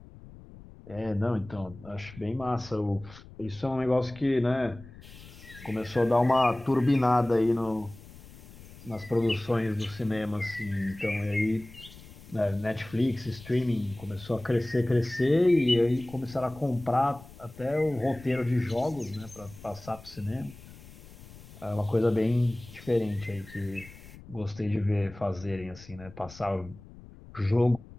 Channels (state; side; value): noise; left; rumble, 19 dB below the sound